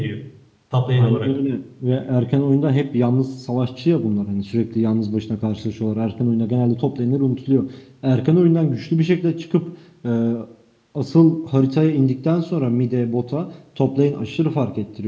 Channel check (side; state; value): both; identical; correlation 1.00